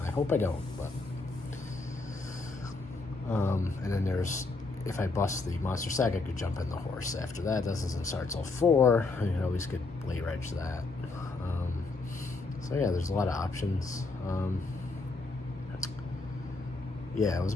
I hope I don't, but and then if I bust the monster stack, I could jump in the horse. After that doesn't start till 4. You can always get late reg that. So yeah, there's a lot of options. Yeah, it was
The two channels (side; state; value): right; quieter; 3.5 dB